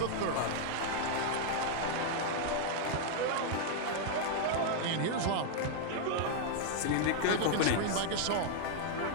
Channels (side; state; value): both; different; correlation -0.01